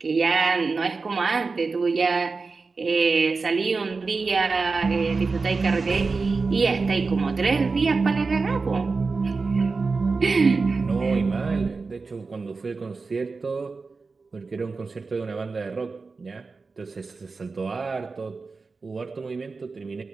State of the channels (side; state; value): left; quieter; 4.3 dB